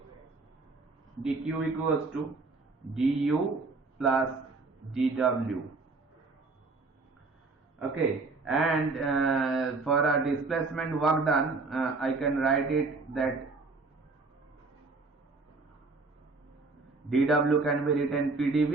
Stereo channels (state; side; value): quieter; left; 3.8 dB